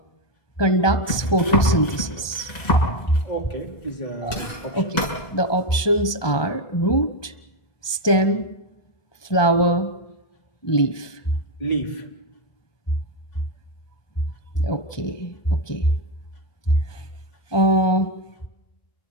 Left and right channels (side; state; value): right; late; 1.2 ms